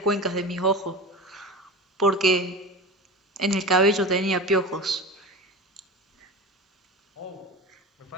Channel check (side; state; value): both; normal; correlation 0.30